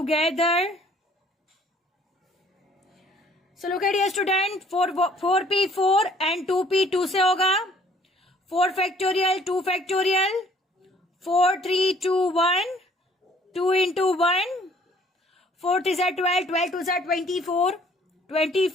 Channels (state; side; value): normal; both; correlation 0.59